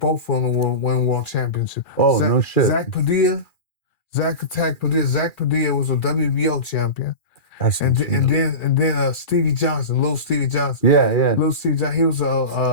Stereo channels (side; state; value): right; late; 2.4 ms